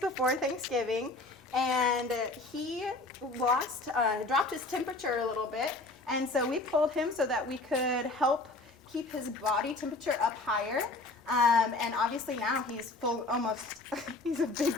Thanksgiving, and he dropped his temperature a little bit, and so we pulled him so that we could help keep his body temperature up higher. And obviously now he's he's a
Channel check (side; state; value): right; quieter; 3.2 dB